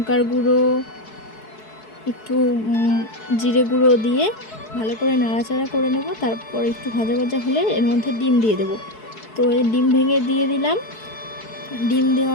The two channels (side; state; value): right; late; 4.7 ms